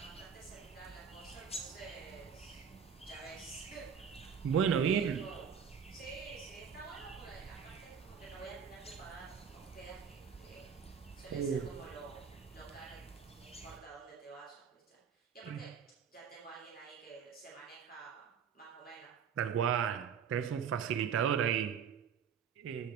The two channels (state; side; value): quieter; left; 7.3 dB